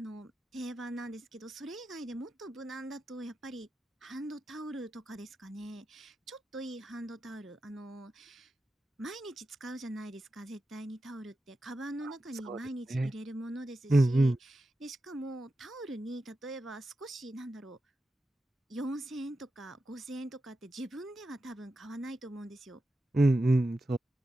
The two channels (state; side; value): normal; both; correlation 0.91